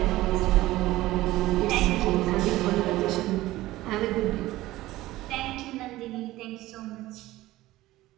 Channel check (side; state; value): left; quieter; 17.0 dB